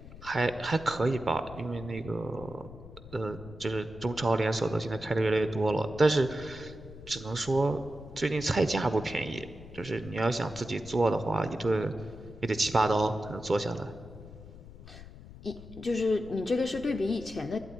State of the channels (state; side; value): noise; left; rumble, 16 dB below the sound